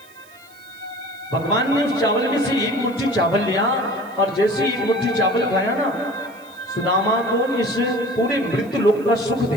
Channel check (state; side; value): noise; right; hiss, 27 dB below the sound